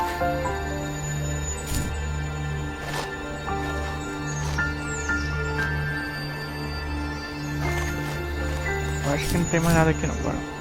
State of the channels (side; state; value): both; identical; correlation 1.00